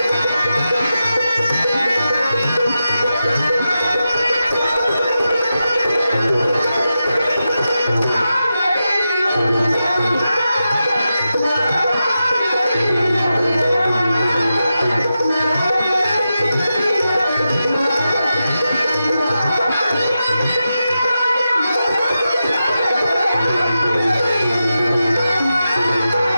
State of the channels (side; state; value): both; inverted; correlation -0.90